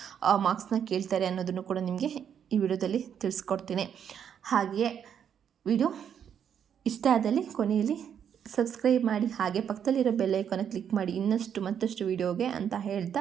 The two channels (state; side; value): quieter; left; 8.4 dB